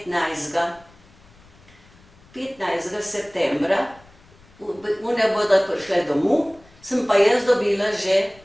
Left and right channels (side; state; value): left; noise; rumble, 27 dB below the sound